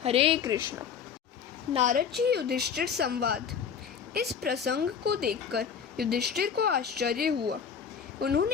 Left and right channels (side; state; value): right; quieter; 7.1 dB